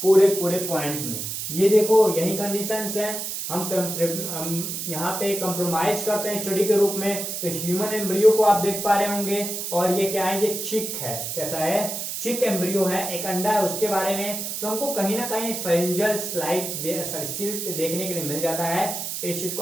पूरे पूरे पॉइंट्स में। ये देखो यही कंडीशंस हैं, हम यहाँ पे कंप्रोमाइज करते हैं स्टडी के रूप में। तो ह्यूमन एम्ब्रियो को आप देख पा रहे होंगे, और ये क्या है, ये चिक है, कैसा है, चिक एम्ब्रियो है, एक अंडा है, उसके बारे में तो हमको कहीं ना कहीं फेरिंजल स्लिट देखने के लिए मिल जाता है। इस चीज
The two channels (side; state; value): right; noise; hiss, 5 dB below the sound